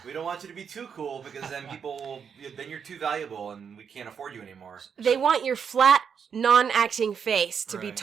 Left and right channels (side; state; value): left; quieter; 7.0 dB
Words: We don't want you to be too cool because then then you're too valuable and we can't afford you anymore. They want your flat, non-acting face to be Right.